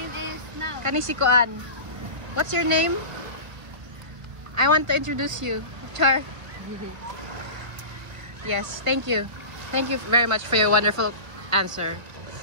is Now. Kanisikoan. What's your name? I want to introduce you. Char. Yes, thank you. Thank you very much for your wonderful answer.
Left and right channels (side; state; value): left; late; 1.5 ms